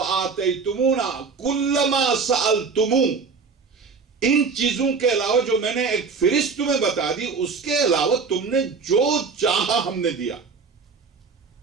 كُلَّ مَا سَأَلْتُمُونَ، ان چیزوں کے علاوہ جو میں نے ایک فہرست تمہیں بتا دی، اس کے علاوہ تم نے جو چاہا ہم نے دیا۔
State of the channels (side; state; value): left; quieter; 5.0 dB